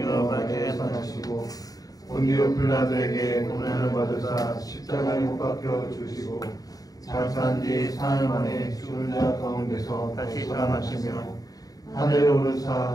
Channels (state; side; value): late; right; 0.18 ms